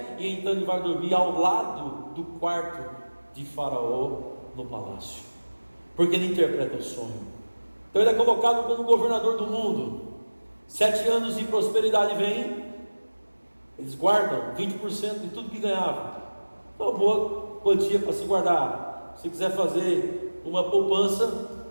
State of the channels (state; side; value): inverted; both; correlation -1.00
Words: e então ele vai dormir ao lado do quarto de Faraó no palácio, porque ele interpreta o sonho. Então ele é colocado como governador do mundo. 7 anos de prosperidade vem. Eles guardam 20% de tudo que ganhavam. Uma boa quantia para se guardar. Se quiser fazer uma poupança,